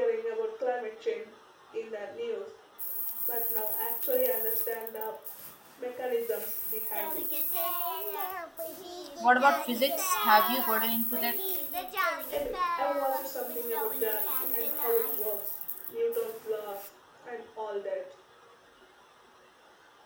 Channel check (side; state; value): both; identical; correlation 1.00